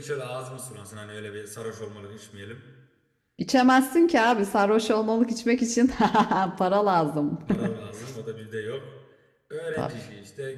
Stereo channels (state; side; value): identical; both; correlation 1.00